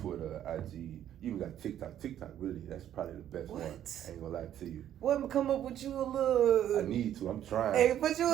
IG, you even got TikTok. TikTok, really, that's probably the best one. I ain't gonna lie to you. What, come up with you a little? I need to. I'm trying. Hey, put you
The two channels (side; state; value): left; quieter; 11.0 dB